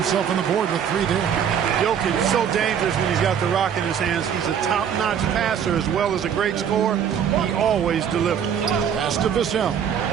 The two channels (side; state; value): left; quieter; 8.3 dB